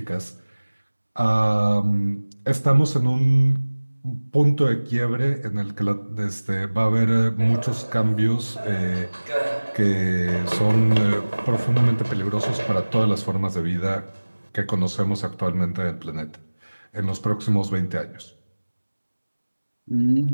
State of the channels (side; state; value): both; inverted; correlation -1.00